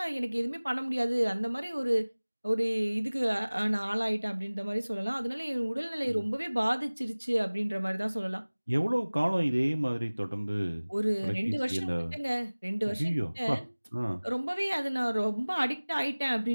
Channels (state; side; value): inverted; both; correlation -1.00